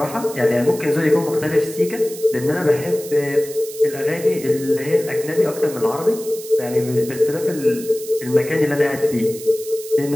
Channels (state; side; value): noise; right; hiss, 14 dB below the sound